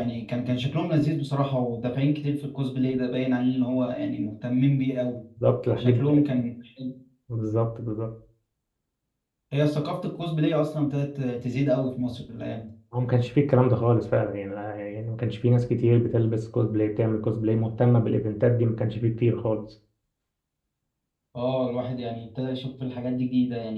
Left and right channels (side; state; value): both; identical; correlation 1.00